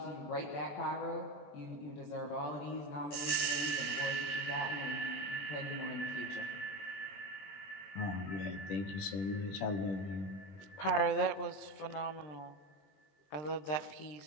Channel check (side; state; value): right; late; 20 ms